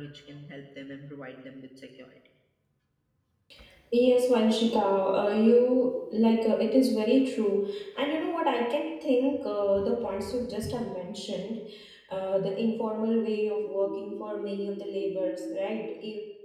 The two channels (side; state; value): both; identical; correlation 1.00